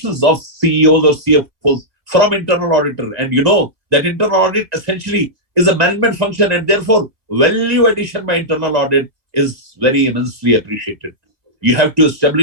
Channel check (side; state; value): left; late; 2.1 ms